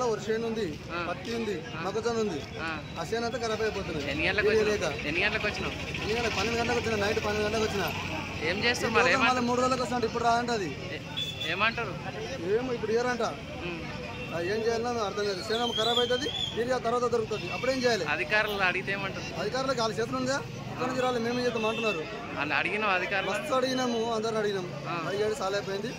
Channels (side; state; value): both; identical; correlation 1.00